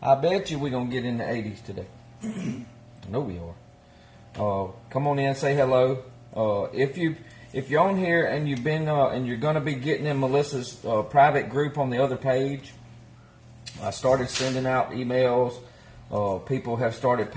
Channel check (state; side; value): identical; both; correlation 1.00